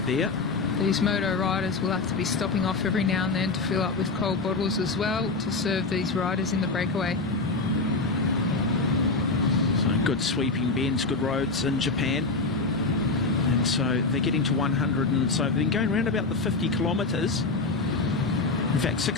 there. These moto riders will have to be stopping off every now and then to fill up with cold bottles as well to serve these riders in the breakaway. So good sweeping bends, good roads in Japan. And so they're getting to 100, and so they've been going around about the 50 kilometres. In fact,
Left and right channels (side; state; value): right; quieter; 3.8 dB